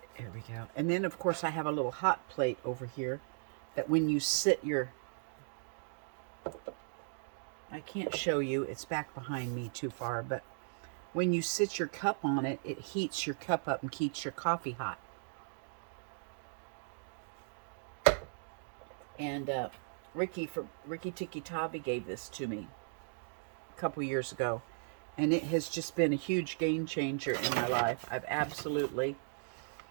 There we go. And then, of course, I have a little hot plate over here that when you sit your... I can't show you. It's back behind me too far, but when you sit your cup on it, it heats your cup up and keeps your coffee hot. And Ricky Tiki Tabi gave this to me a couple years ago, and it has just been a huge game changer in my life. I've absolutely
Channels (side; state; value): left; silent; digital silence